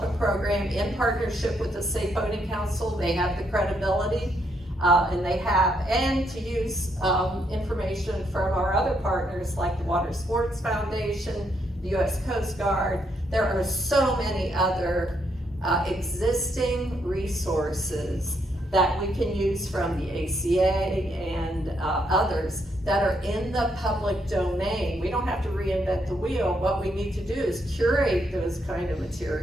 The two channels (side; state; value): both; normal; correlation 0.75